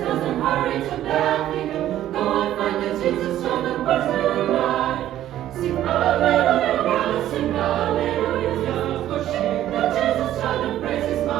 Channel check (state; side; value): quieter; left; 12.6 dB